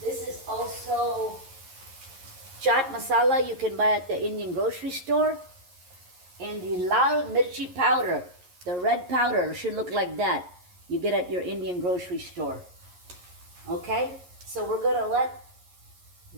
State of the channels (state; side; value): late; left; 11 ms